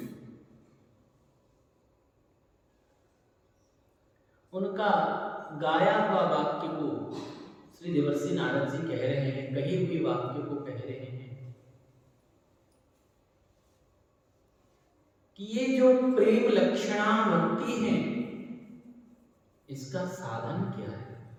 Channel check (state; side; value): identical; both; correlation 1.00